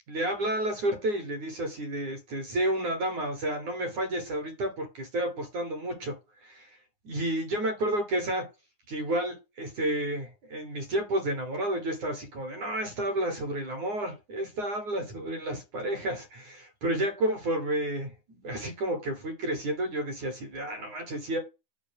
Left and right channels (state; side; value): late; left; 9.7 ms